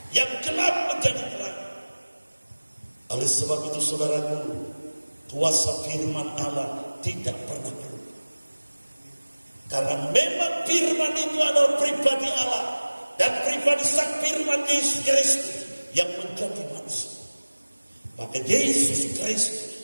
yang gelap menjadi terang. Oleh sebab itu saudaraku, kuasa firman Allah tidak pernah berubah. Karena memang firman itu adalah pribadi Allah dan pribadi sang firman Yesus Kristus yang menjadi manusia. Maka Yesus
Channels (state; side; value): inverted; both; correlation -1.00